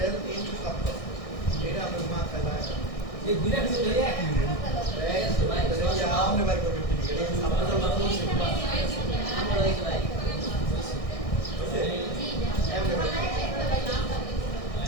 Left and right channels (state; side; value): late; right; 1.6 ms